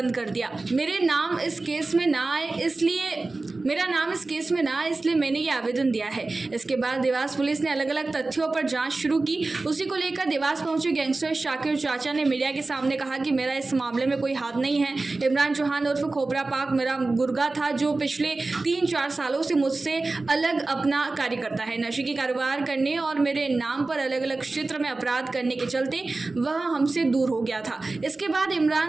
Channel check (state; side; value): quieter; left; 3.4 dB